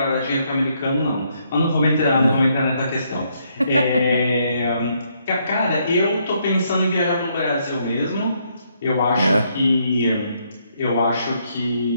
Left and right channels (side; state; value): both; inverted; correlation -0.73